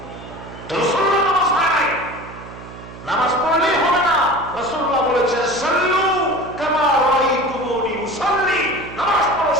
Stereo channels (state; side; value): noise; right; hum, 15 dB below the sound